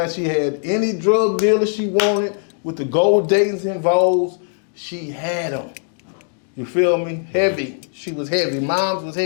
she had any drug dealer she wanted with the gold datings involved, she had them. You feel me? Heavy. She was heavy. Moms was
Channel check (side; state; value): right; silent; 65 dB below the other